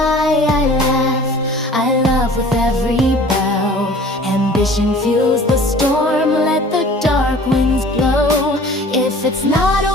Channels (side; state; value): both; normal; correlation 0.47